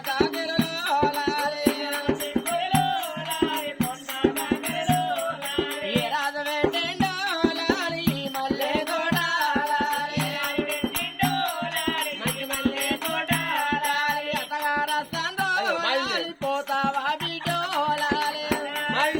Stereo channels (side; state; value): both; identical; correlation 1.00